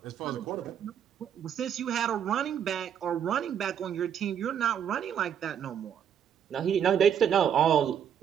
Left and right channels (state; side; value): quieter; left; 8.7 dB